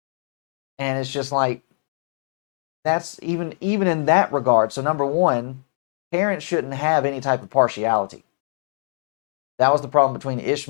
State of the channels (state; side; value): silent; right; digital silence